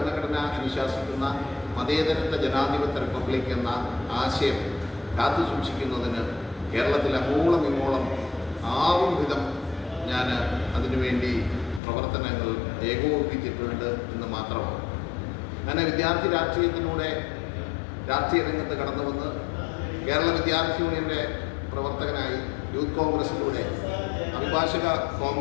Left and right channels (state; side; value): drops out; right; at 11.8 s